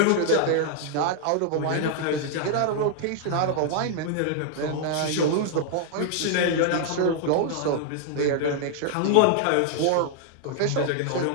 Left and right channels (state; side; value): different; both; correlation 0.00